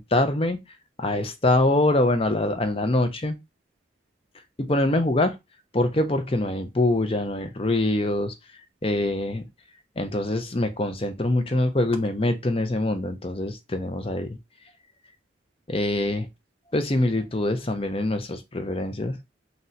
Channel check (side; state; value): both; normal; correlation 0.61